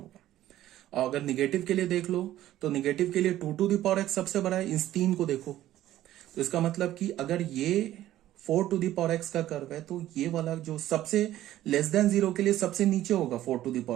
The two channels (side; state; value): left; quieter; 13.7 dB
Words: और अगर निगेटिव के लिए देख लो, तो निगेटिव के लिए 2 to the power x सबसे बड़ा है, इस 3 को देखो। तो इसका मतलब कि अगर ये 4 to the power x का कर्व है, तो ये वाला जो सबसे लेस देन 0 के लिए सबसे नीचे होगा 4 to the